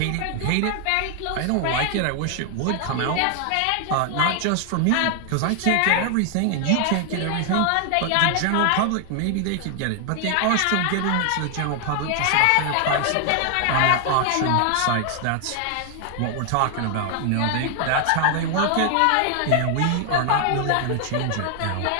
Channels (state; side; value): different; both; correlation 0.00